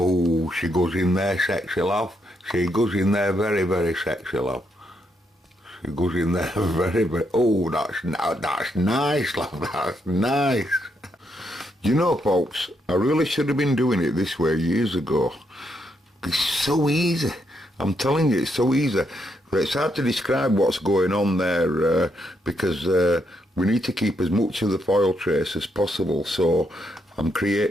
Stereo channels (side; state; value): both; normal; correlation 0.78